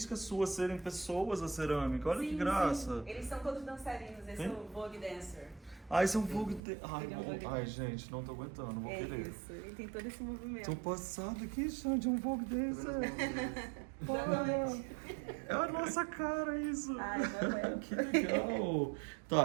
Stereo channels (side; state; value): left; drops out; at 6.6 s